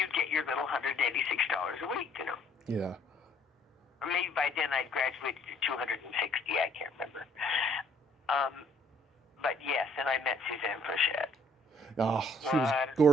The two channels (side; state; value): both; normal; correlation 0.62